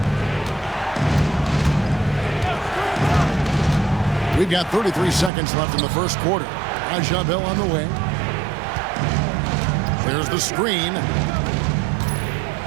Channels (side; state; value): left; drops out; at 5.3 s